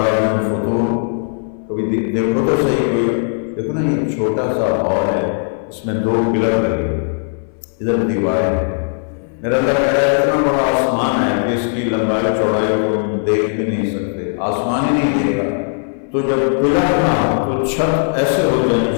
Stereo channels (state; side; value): silent; right; 60 dB below the other